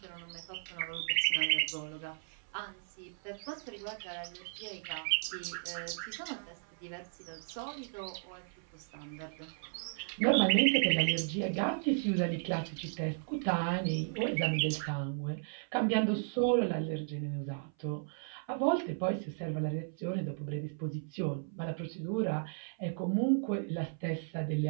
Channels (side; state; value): left; silent; 54 dB below the other